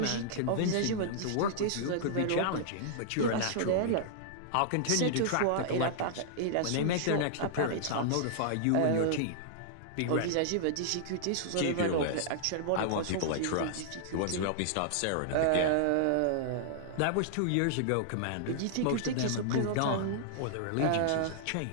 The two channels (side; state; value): both; different; correlation -0.01